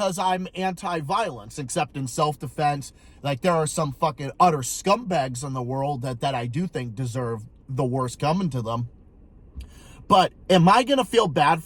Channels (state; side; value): identical; both; correlation 1.00